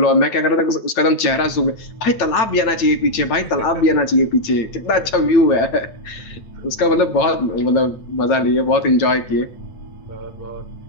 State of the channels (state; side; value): late; right; 8.9 ms